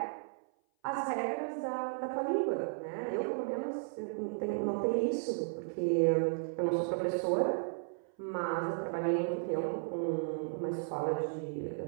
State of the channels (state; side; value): silent; left; 55 dB below the other